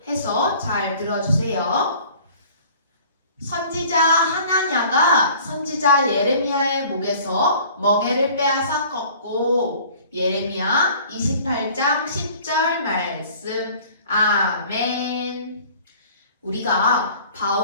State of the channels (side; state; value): both; inverted; correlation -0.49